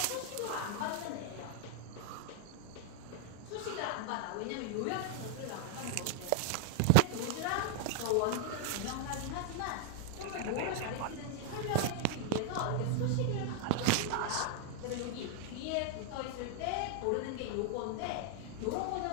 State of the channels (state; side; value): different; both; correlation 0.00